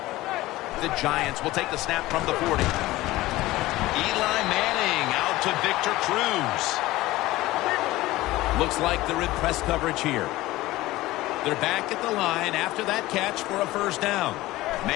The Giants will take the snap from the 40. Eli Manning out to Victor Cruz. Looks like they're in press coverage here. They're back at the line after that catch for a first down.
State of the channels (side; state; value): right; quieter; 17.8 dB